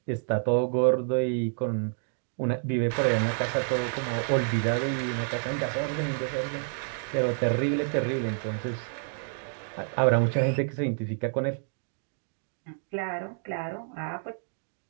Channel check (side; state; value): left; silent; digital silence